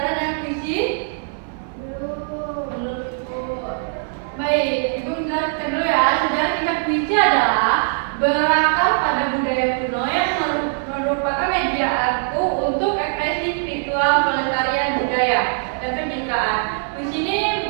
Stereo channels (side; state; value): left; silent; 57 dB below the other